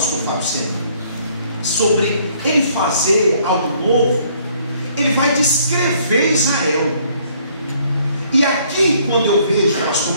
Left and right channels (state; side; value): inverted; both; correlation -0.63